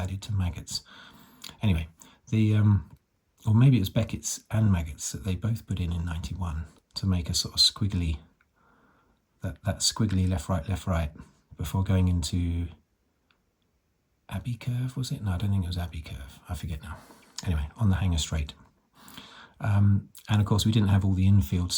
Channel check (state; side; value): identical; both; correlation 1.00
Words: to maggots? Anyway, or maybe it was Beckett's and maggots that they both put in 91 to make a sort of squiggly, that squiggly left, right, before going into Abbey Curve, was it? No, I don't think it was Abbey Curve. I forget now. Anyway, on the Hanger Straight. And of course, we didn't have all the infield